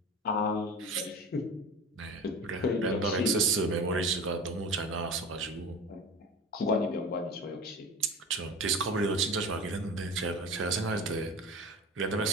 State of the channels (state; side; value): normal; both; correlation 0.34